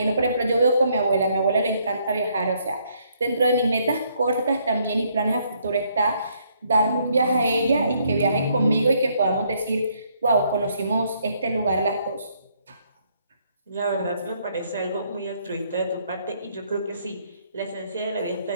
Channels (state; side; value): inverted; both; correlation -0.69